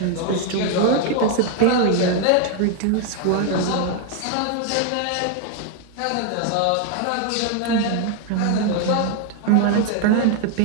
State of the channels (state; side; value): different; both; correlation 0.01